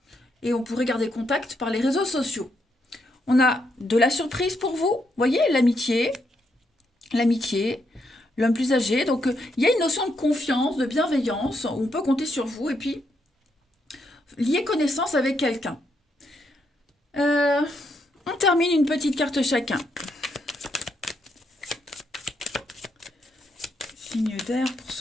Et on pourrait garder contact par les réseaux sociaux. On a de la surprise pour vous, voyez, l'amitié, l'homme plus âgé. Donc, il y a une notion de confiance, de bienveillance, où on peut compter sur vous, et puis, lier connaissance avec quelqu'un. On termine une petite carte chacun. Signe d'air pour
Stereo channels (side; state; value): both; normal; correlation 0.78